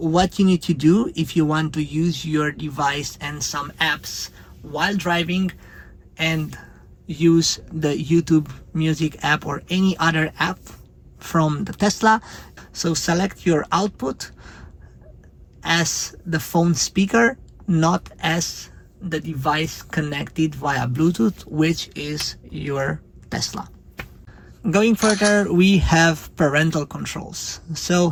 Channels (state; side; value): identical; both; correlation 1.00